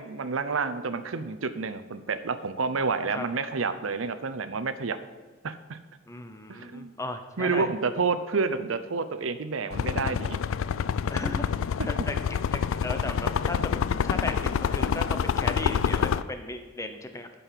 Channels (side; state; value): both; normal; correlation 0.09